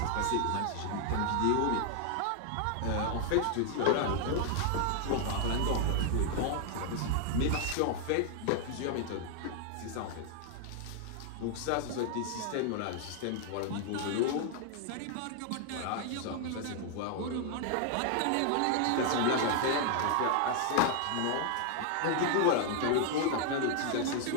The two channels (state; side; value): different; both; correlation 0.00